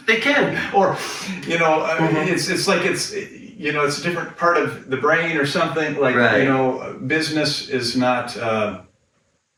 They can. Or, you know, it's like you know, it's a different part of the brain or something. Like, right. You know, business is not.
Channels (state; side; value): identical; both; correlation 1.00